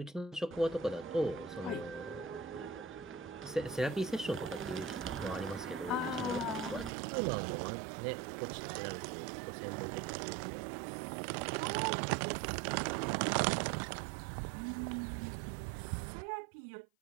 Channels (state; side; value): drops out; left; at 6.9 s